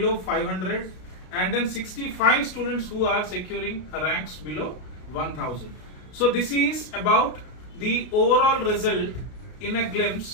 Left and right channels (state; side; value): late; right; 33 ms